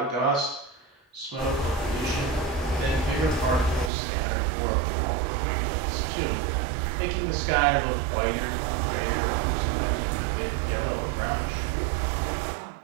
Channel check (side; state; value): left; drops out; at 3.9 s